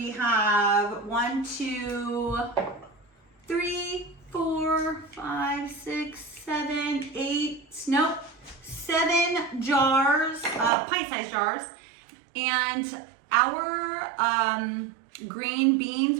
have 7 jars, pint-sized jars. And our green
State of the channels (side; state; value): left; drops out; at 10.7 s